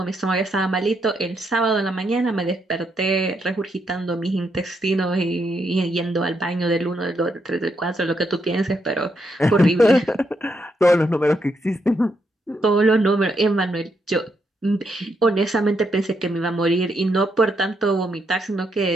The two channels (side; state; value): both; normal; correlation 0.78